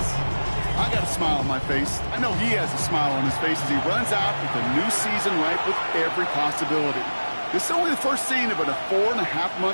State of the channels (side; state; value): both; inverted; correlation -1.00